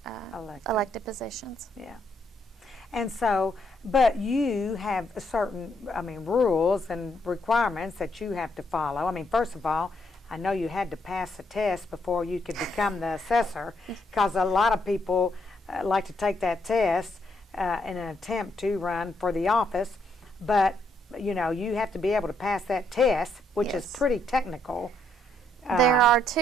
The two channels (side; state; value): both; normal; correlation 0.74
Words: elected positions. Yeah. And so, but you have certain, rules and requirements that you have to follow. First of all, I know you had to pass a test before you could become the assessor, because a lot of people like to take that test in an attempt to run for the office. But, you have to be able to pass that test, which is Yes. pretty technical. There are